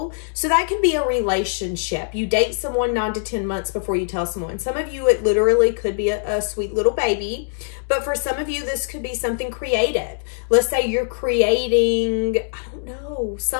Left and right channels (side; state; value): right; silent; digital silence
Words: So that could be a relationship. You date someone 9 to 10 months before you tell someone. Some of you, it literally could be a sweet little baby. But for some of you, this could be something creative. Let's say you're creating, I don't know,